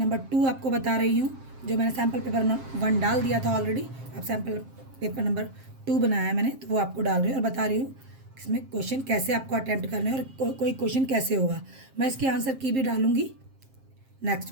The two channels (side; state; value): left; late; 7.5 ms